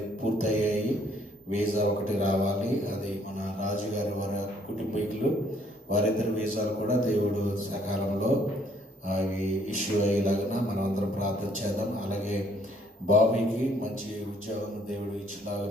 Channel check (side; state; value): both; normal; correlation 0.64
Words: పూర్తయ్యాయి. వీసా ఒకటి రావాలి. అది మన రాజుగారి వారి కుటుంబీకులు వారిద్దరి వీసాలు కూడా దేవుడు సకాలంలో అవి ఇష్యూ అయ్యేలాగా మనం అందరం ప్రార్థన చేద్దాం. అలాగే బాబీకి మంచి ఉద్యోగం దేవుడు